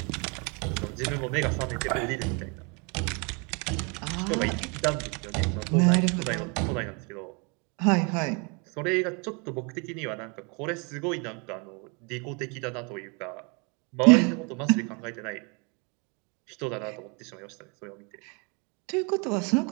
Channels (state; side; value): quieter; left; 32.7 dB